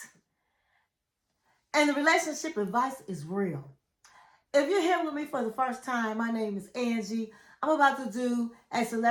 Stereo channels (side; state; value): both; identical; correlation 1.00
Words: and the relationship advice is real. If you're here with me for the first time, my name is Angie. I'm about to do a